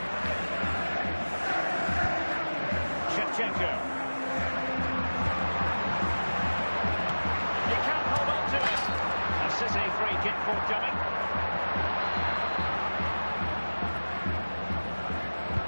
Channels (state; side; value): inverted; both; correlation -1.00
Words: Shevchenko. He can't hold on to it. A City free kick forthcoming.